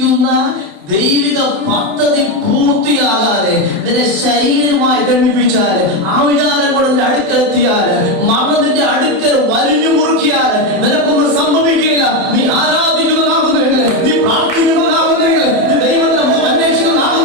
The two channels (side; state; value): left; late; 28 ms